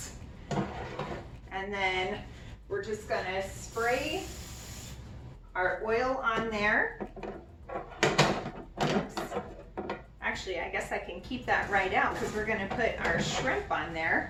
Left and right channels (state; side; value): identical; both; correlation 1.00